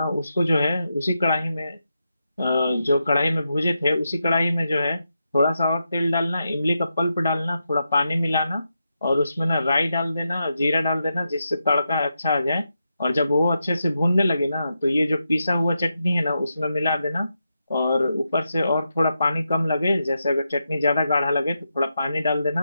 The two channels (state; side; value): inverted; both; correlation -0.86